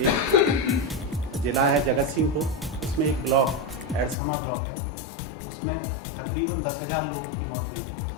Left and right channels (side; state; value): right; drops out; at 4.2 s